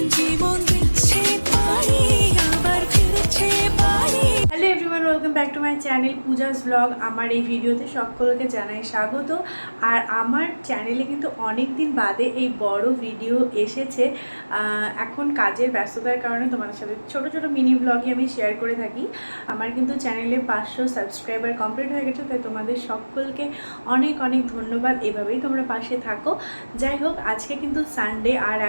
জীবন দিচ্ছে পারি আবার ফিরছে পারি। Hello everyone, welcome back to my channel Puja's blog. আমার এই ভিডিওতে সকলকে জানাই স্বাগত। আর আমার চ্যানেলে কিন্তু অনেক দিন বাদে এই বড় ভিডিও এসেছে। এখন কাজের ব্যস্ততার কারণে তোমাদের সাথে ছোট ছোট মিনি ব্লগই আমি শেয়ার করে থাকি। আমার কিন্তু চ্যানেলে 500 সাবস্ক্রাইবার কমপ্লিট হয়ে গেছে, তাই তোমাদের সকলকে অনেক অনেক ধন্যবাদ। এভাবেই তোমরা পাশে থাকো। যাই হোক, আজকে কিন্তু সানডে, আর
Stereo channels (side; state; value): both; inverted; correlation -1.00